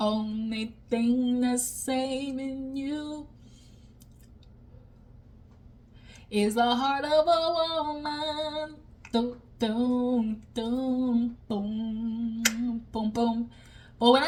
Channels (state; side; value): identical; both; correlation 1.00